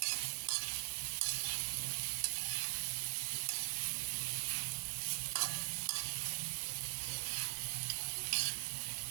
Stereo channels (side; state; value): left; silent; digital silence